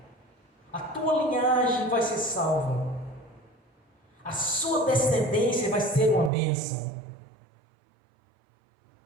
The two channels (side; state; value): left; drops out; at 6.3 s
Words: A tua linhagem vai ser salva. A sua descendência vai ser uma bênção.